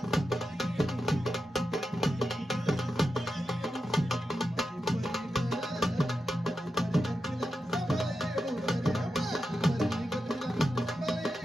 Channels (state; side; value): normal; both; correlation 0.89